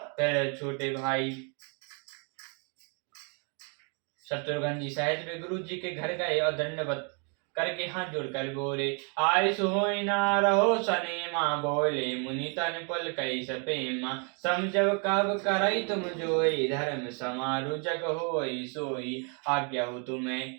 फिर छोटे भाई शत्रुघ्न जी सहित वे गुरु जी के घर गए और दंडवत करके हाथ जोड़कर बोले, आय सोई ना रहो सनेमा। बोले मुनि तन पुल कई सपेमा, समझब कब करई तुम जोई। धर्म समारु जग होई सोई, आज्ञा हो तुम्हें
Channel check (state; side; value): quieter; left; 37.4 dB